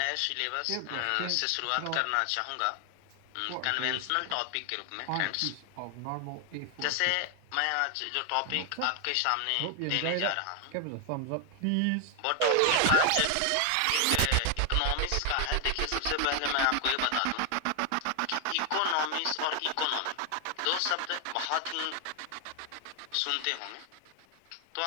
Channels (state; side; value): different; both; correlation 0.00